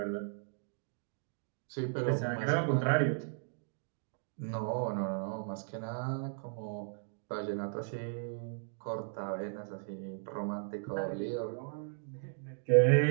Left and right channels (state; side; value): silent; left; digital silence